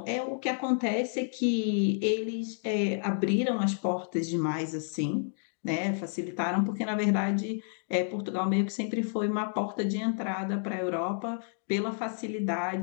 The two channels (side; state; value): right; silent; digital silence